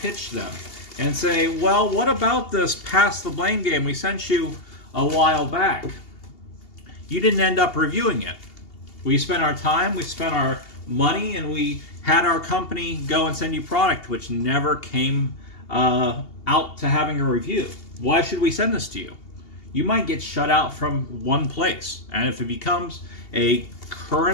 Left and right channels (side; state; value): right; late; 2.8 ms